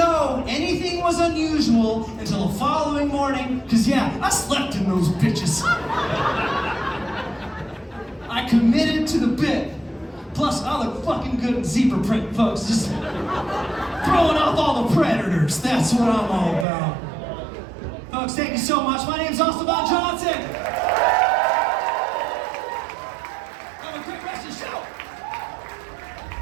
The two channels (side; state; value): left; drops out; at 16.7 s